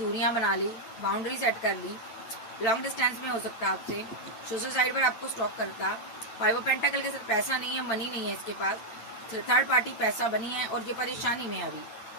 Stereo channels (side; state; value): right; late; 8.9 ms